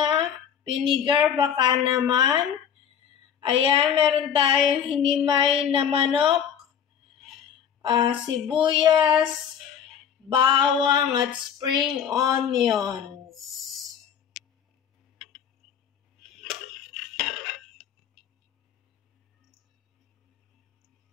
vinegar baka naman. Ayan, meron tayong hinimay na manok, sibuyas, bawang at spring onions.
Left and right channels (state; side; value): quieter; right; 8.3 dB